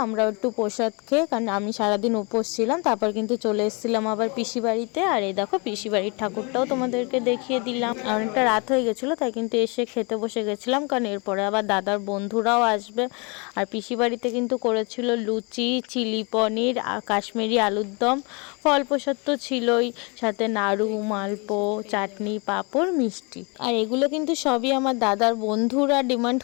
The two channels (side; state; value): right; quieter; 31.1 dB